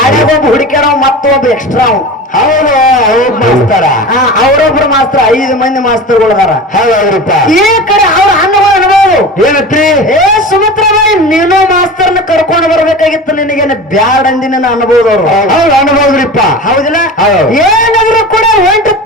ಒಬ್ಬ ಹುಡುಕ್ಯಾರ, ಮತ್ತೊಬ್ಬ ಎಕ್ಸ್ಟ್ರಾ. ಹೌದು. ಅವ್ರ ಮಾಸ್ತರ. ಅವರೊಬ್ರು ಮಾಸ್ತರ 5 ಮಂದಿ ಮಾಸ್ತರ್ಗಳು ಅದಾರ. ಹೌದ್ರಿಪ್ಪ. ಈ ಕಡೆ ಅವ್ರ ಅನ್ನಗಳು ಅನ್ಬೋದು. ಏನತ್ರಿ? ಸುಮಿತ್ರಾಬಾಯಿ, ನೀನು ಮಾಸ್ತರ್ನ ಕರ್ಕೊಂಡು ಬರ್ಬೇಕಾಗಿತ್ತು, ನಿನಗೇನು ಬ್ಯಾಡ್ ಅಂದಿನ ಅನ್ಬೋದು ಅವ್ರು. ಹೌದು, ಅನ್ಬೋದ್ರಿಪ್ಪ. ಹೌದಿಲ್ಲ? ಹೌದು. ಏನಾದ್ರು ಕೂಡ ಒಂಟು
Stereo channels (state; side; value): normal; both; correlation 0.32